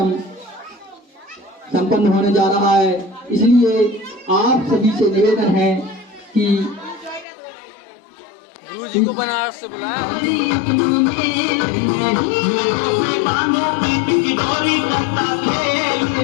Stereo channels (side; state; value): right; drops out; at 7.2 s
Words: संपन्न होने जा रहा है। इसलिए आप सभी से निवेदन है कि गुरुजी को बनारस से बुलाया।